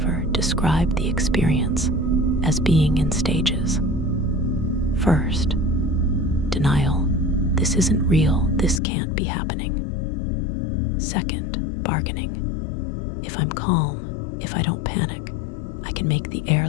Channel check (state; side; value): drops out; right; at 8.8 s